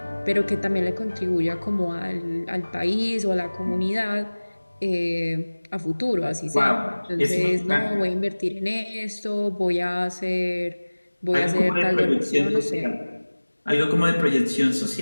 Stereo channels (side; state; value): both; inverted; correlation -1.00